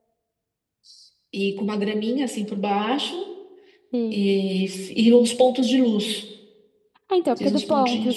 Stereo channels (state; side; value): identical; both; correlation 1.00